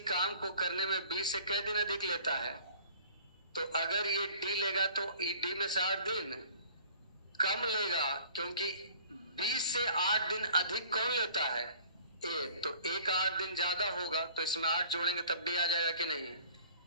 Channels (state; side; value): inverted; both; correlation -0.50